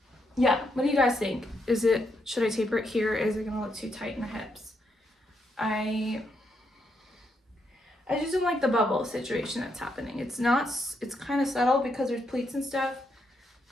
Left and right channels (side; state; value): both; normal; correlation 0.79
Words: yeah, what do you guys think? Should I taper it here? Is it gonna look too tight in the hips? I just don't like the bubble situation that's happening. It's kind of subtle because there's pleats and stuff,